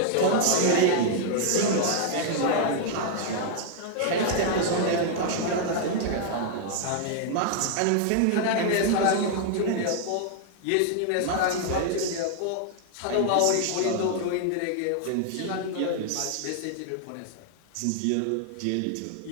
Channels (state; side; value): different; both; correlation 0.00